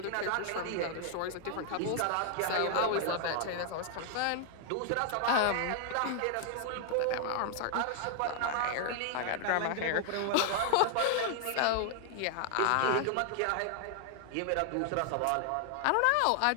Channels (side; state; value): both; different; correlation 0.00